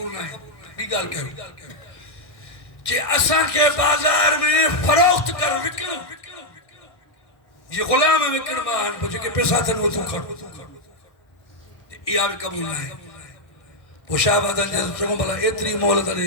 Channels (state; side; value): late; right; 1.6 ms